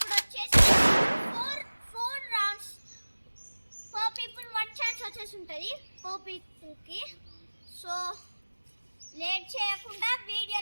వచ్చేసి ఫోర్ రౌండ్స్ పర్ పీపుల్ 1 ఛాన్స్ వచ్చేసి ఉంటుంది పర్ పీపుల్కి. సో లేట్ చేయకుండా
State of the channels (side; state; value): both; inverted; correlation -1.00